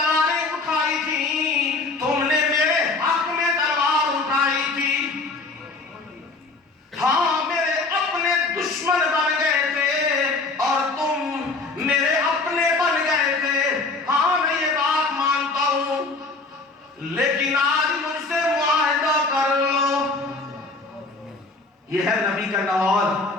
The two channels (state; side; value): quieter; right; 3.6 dB